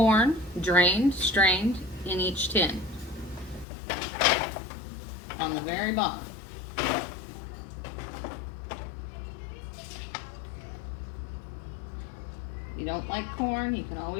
drained, strained, in each tin. On the very bottom. If you don't like corn, you can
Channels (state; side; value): drops out; right; at 3.7 s